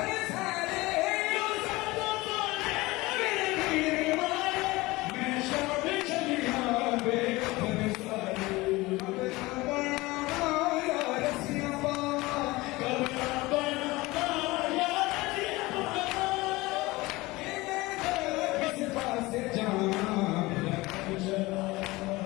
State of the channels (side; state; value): right; quieter; 21.1 dB